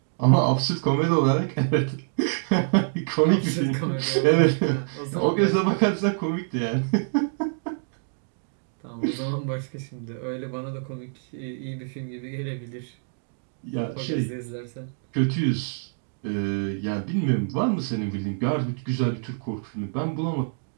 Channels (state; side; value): silent; left; digital silence